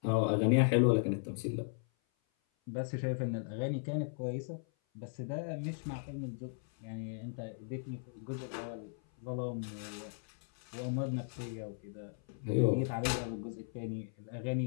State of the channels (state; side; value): silent; right; 53 dB below the other